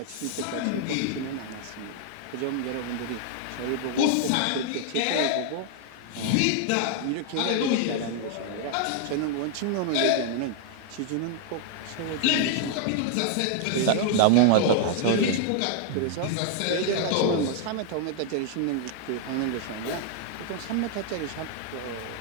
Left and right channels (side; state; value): both; different; correlation 0.00